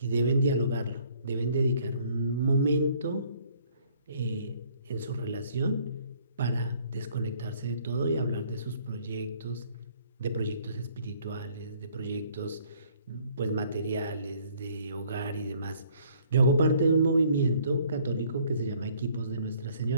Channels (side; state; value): both; inverted; correlation -0.60